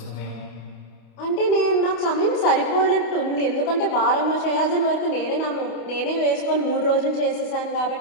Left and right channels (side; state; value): right; late; 28 ms